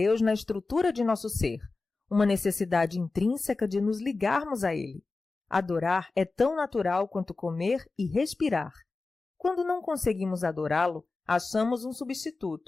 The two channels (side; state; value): right; quieter; 3.7 dB